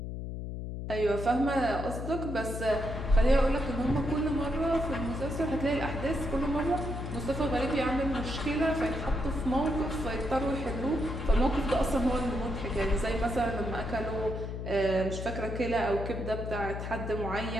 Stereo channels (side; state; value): left; noise; hum, 6 dB below the sound